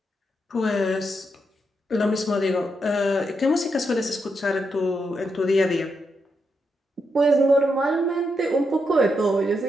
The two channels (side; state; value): both; normal; correlation 0.82